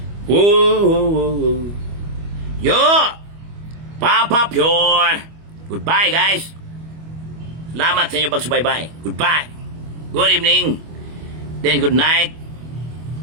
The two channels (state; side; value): late; left; 25 ms